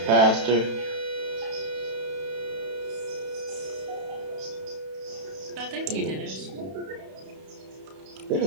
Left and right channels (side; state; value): left; late; 31 ms